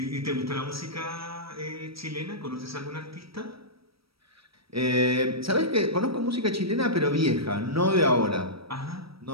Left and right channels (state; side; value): late; left; 0.76 ms